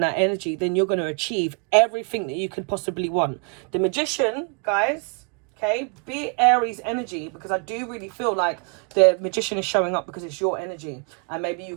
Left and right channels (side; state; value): left; quieter; 38.7 dB